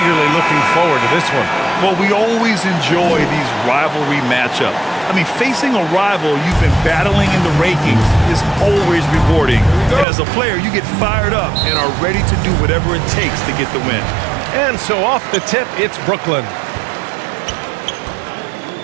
looking forward to this one. Well, we always enjoy these rivalry matchups. I mean, facing a rival you've been battling in the rankings is always rewarding. And as a player, you get fired up and are ready to do whatever it takes to get the win. And so off the tip, it's Brooklyn.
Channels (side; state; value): left; drops out; at 10.1 s